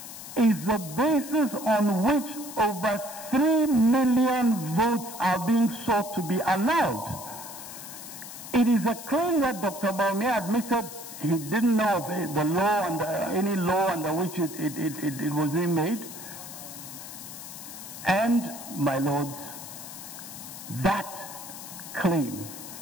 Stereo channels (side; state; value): left; noise; hiss, 12 dB below the sound